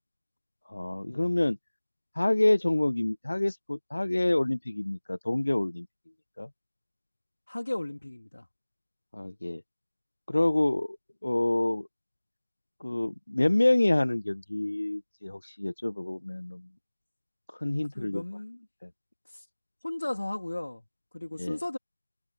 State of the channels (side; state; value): both; inverted; correlation -1.00